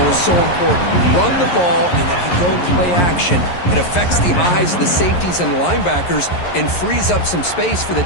is so important. You run the ball, and if you go play action, it affects the eyes of the safeties and the linebackers and frees up some space for the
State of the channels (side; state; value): right; late; 11 ms